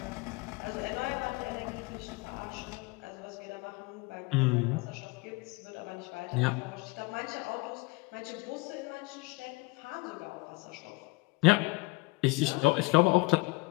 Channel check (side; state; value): right; quieter; 24.2 dB